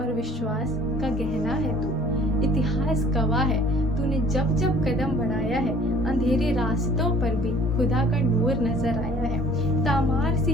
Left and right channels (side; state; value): both; normal; correlation 0.53